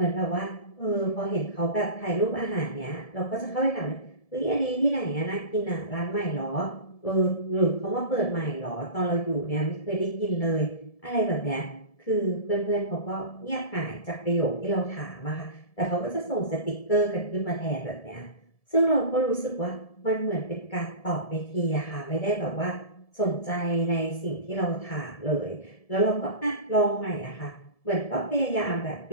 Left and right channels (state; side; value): late; right; 1.7 ms